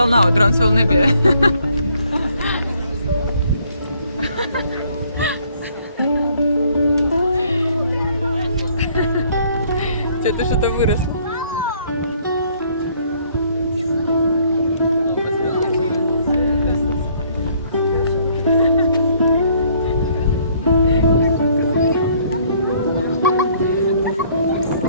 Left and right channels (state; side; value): inverted; both; correlation -0.63